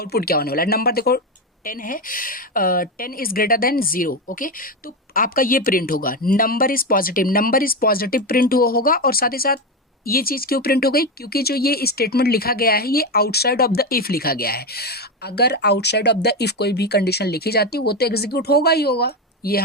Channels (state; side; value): normal; both; correlation 0.13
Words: क्या होने वाला है। नंबर देखो 10 है, 10 इज ग्रेटर देन 0, ओके, तो आपका ये प्रिंट होगा, नंबर इज पॉजिटिव प्रिंट होगा। और साथ ही साथ ये चीज़ क्यों प्रिंट हो गई, क्योंकि जो ये स्टेटमेंट लिखा गया है ये आउटसाइड ऑफ द इफ लिखा गया है। अगर आउटसाइड ऑफ द इफ कोई भी कंडीशन लिखी जाती है वो तो एग्जीक्यूट होगा ही होगा, ये